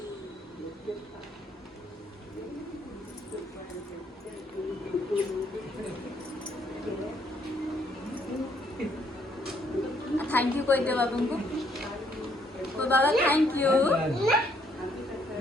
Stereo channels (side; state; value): both; normal; correlation 0.68